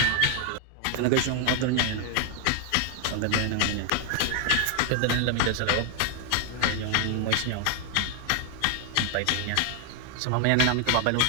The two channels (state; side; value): different; both; correlation 0.00